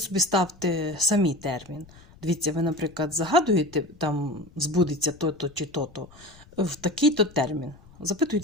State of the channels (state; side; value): noise; left; rumble, 24 dB below the sound